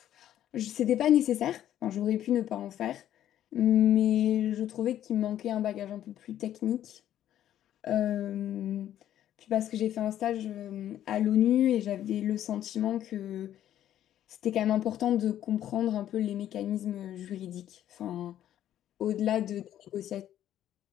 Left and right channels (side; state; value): right; quieter; 11.6 dB